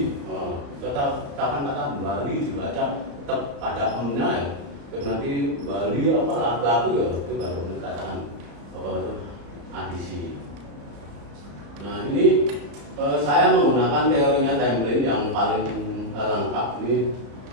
Tetap kata Bali dibaca tetap pada emnya ya. Terus nanti Bali apa lagu ya itu baru dikatakan apa itu adisi. Nah ini saya menggunakan teorinya Templin yang paling lengkap ini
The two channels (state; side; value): late; left; 34 ms